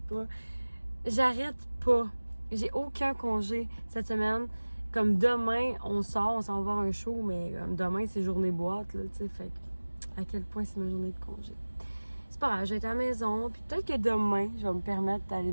pas. J'arrête pas. J'ai aucun congé cette semaine. Comme demain, on s'en va voir un show, mais comme demain, c'est journée boîte, là, tu sais. Fait que, à quel point c'est ma journée de congé. C'est pas grave, je vais être à la maison, puis peut-être que demain, je vais me permettre d'aller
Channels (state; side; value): inverted; both; correlation -1.00